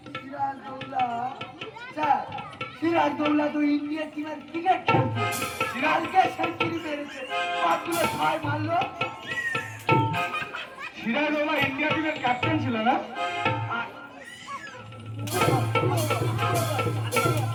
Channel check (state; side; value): identical; both; correlation 1.00